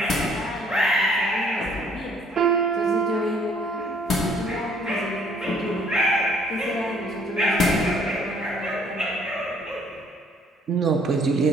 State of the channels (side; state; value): both; normal; correlation 0.61